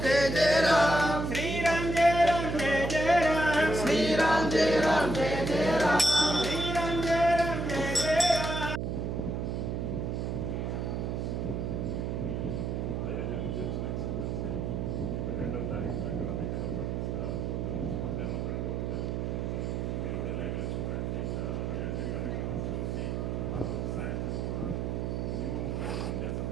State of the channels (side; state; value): right; noise; hum, 2 dB below the sound